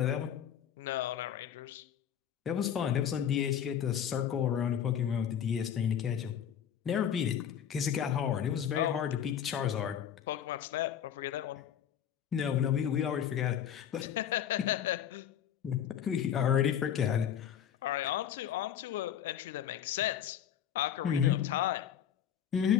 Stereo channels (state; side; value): quieter; right; 9.2 dB